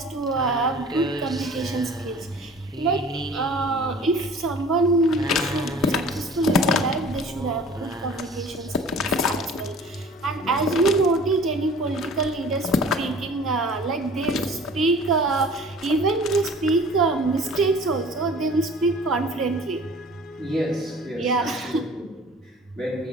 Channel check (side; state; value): both; normal; correlation 0.46